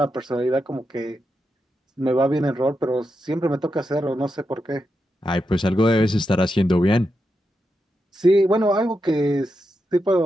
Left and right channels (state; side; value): normal; both; correlation 0.86